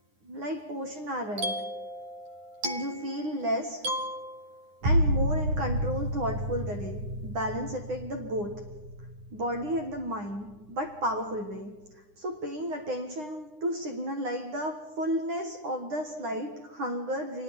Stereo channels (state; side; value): late; left; 9.8 ms